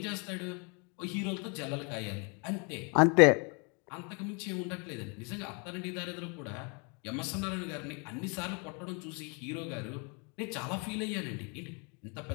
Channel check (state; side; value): quieter; right; 34.3 dB